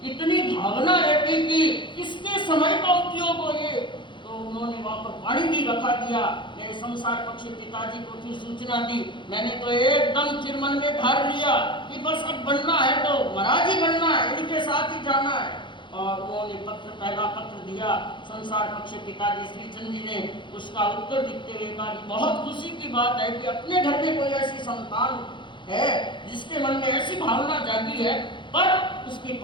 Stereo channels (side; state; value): right; late; 0.23 ms